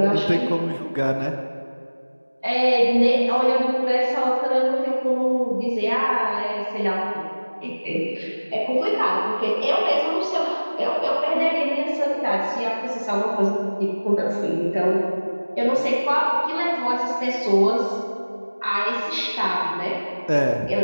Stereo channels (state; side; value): inverted; both; correlation -1.00